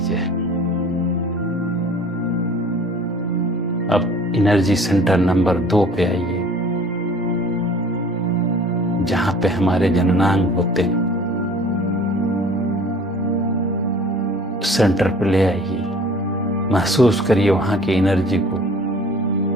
अब एनर्जी सेंटर नंबर 2 पे आइए, जहां पे हमारे जननांग होते हैं। सेंटर पे ले आइए, महसूस करिए वहां की एनर्जी को,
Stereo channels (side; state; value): both; normal; correlation 0.49